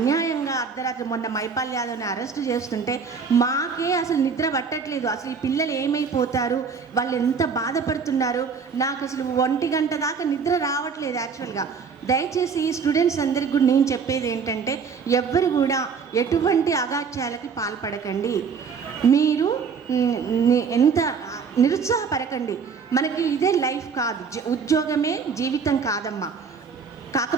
అర్ధరాత్రి మొన్న మైపాల్ యాదవ్ని అరెస్టు చేస్తుంటే మాకే అసలు నిద్ర పట్టట్లేదు. అసలు ఈ పిల్లలు ఏమైపోతారు, వాళ్ళు ఎంత బాధపడుతున్నారు, నాకు అసలు 1 గంట దాకా నిద్ర రావట్లేదు యాక్చువల్గా. దయచేసి స్టూడెంట్స్ అందరికి కూడా నేను చెప్పేది ఏంటంటే, ఎవ్వరు కూడా ఎటువంటి అగాత్యాలకి పాల్పడకండి. మీరు ఎంత నిరుత్సాహపడకండి. మనకి ఇదే లైఫ్ కాదు, ఉద్యోగమే జీవితం కాదమ్మా.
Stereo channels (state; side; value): quieter; left; 5.8 dB